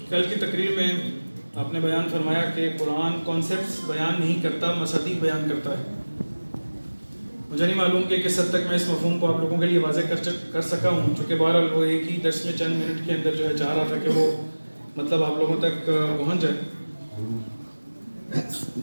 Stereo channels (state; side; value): inverted; both; correlation -1.00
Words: کل کی تقریر میں آپ نے بیان فرمایا کہ قرآن کانسیپٹس بیان نہیں کرتا، مصادیق بیان کرتا ہے۔ مجھے نہیں معلوم کہ کس حد تک میں اس مفہوم کو آپ لوگوں کے لیے واضح کر سکا ہوں، چونکہ بہرحال وہ ایک ہی درس میں چند منٹ کے اندر جو ہے چاہ رہا تھا کہ وہ مطلب آپ لوگوں تک پہنچ جائے۔